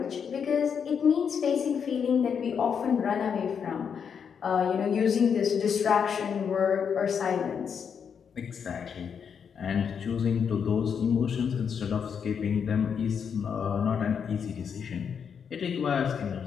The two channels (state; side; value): quieter; right; 7.0 dB